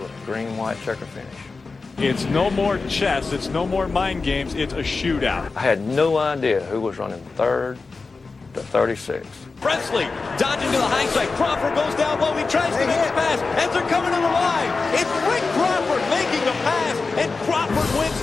a green and white checker finish. It's no more chess. It's no more mind games. It's a shootout. I had no idea who was running 3rd to 36. Presley dodging to the high side. Crawford goes down low. He tries to make a pass as they're coming to the line. It's Rick Crawford making the pass, and Crawford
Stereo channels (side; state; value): right; quieter; 4.1 dB